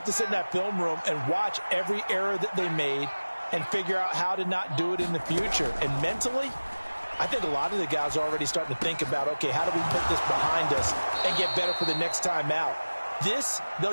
to sit in that film room and watch every error that they made and figure out how to not do it in the future. And mentally, I think a lot of the guys are already starting to think about, okay, how do we put this behind us and get better for the next time out? This,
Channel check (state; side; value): inverted; both; correlation -1.00